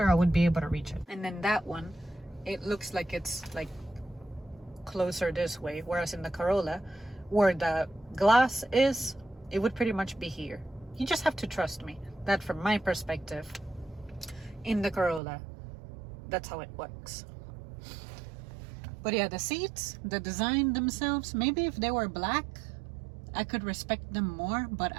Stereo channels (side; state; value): left; drops out; at 15.2 s